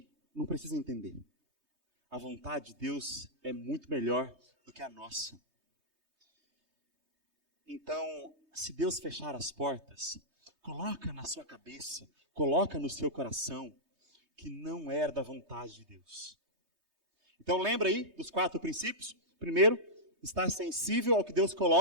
não precisa entender. A vontade de Deus é muito melhor do que a nossa. Então, se Deus fechar as portas, coloca na sua cabeça, coloca no seu coração, que não era da vontade de Deus. Então lembra aí dos 4 princípios? Primeiro, estar sensível ao que Deus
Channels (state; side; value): late; left; 3.2 ms